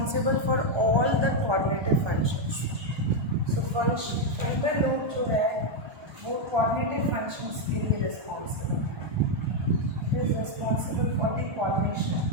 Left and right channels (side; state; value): left; late; 1.3 ms